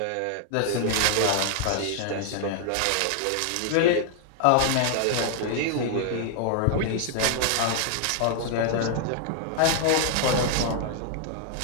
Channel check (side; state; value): both; different; correlation 0.00